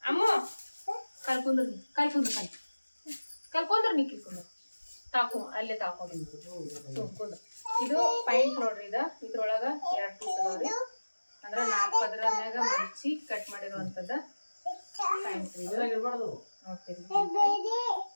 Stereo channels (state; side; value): inverted; both; correlation -1.00